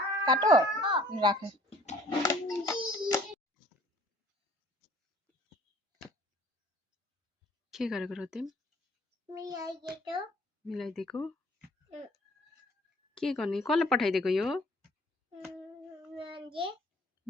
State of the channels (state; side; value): normal; both; correlation 0.55